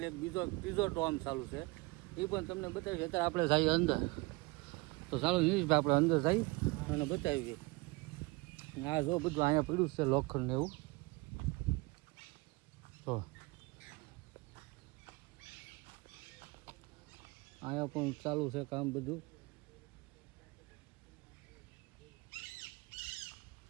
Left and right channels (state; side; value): quieter; left; 25.0 dB